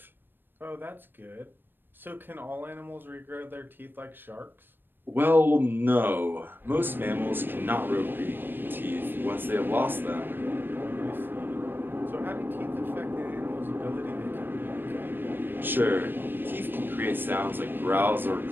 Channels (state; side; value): late; left; 0.096 ms